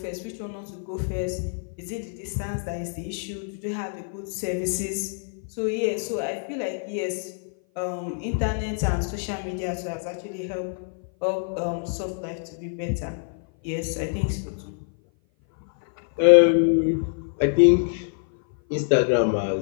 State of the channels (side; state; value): right; silent; 57 dB below the other